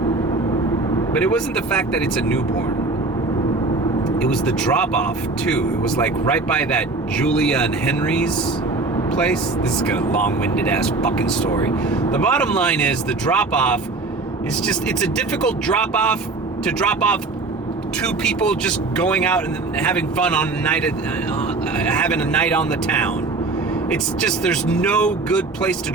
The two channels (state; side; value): quieter; left; 3.5 dB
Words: but it wasn't the fact that it's a newborn. It was the drop-off too. It was like right by that Julia and Henry's place. This is a long-winded ass fucking story. The bottom line is the drop-off is it's a difficult drop-off to drop off two people just going out and having fun on a night, having a night on the town. It's just, there's no good place to